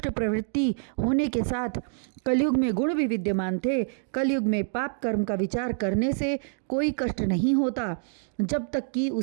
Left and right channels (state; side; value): silent; left; digital silence